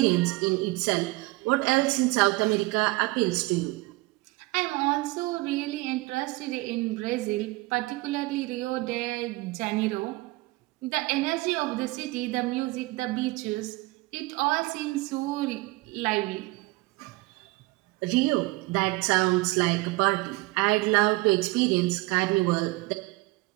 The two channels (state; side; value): quieter; left; 21.9 dB